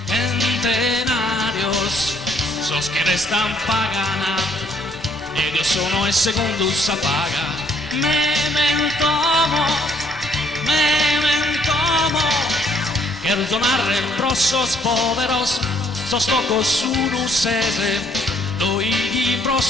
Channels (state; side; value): normal; both; correlation 0.66